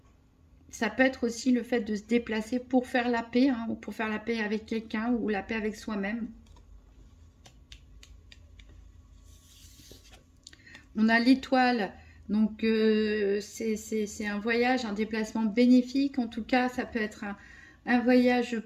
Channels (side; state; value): both; identical; correlation 1.00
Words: peut être aussi le fait de se déplacer pour faire la paix, hein, ou pour faire la paix avec quelqu'un ou la paix avec soi-même. On a l'étoile, donc c'est un voyage, un déplacement bénéfique. En tout cas, ça peut être un voyage